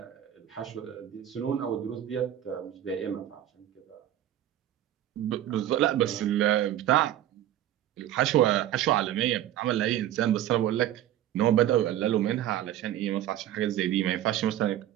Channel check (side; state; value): left; quieter; 12.2 dB